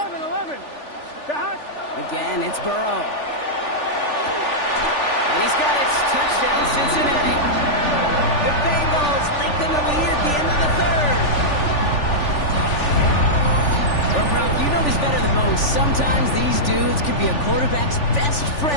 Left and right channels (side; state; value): right; late; 3.4 ms